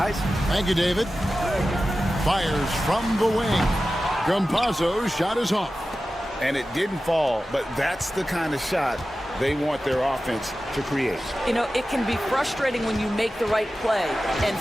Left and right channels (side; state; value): both; normal; correlation 0.94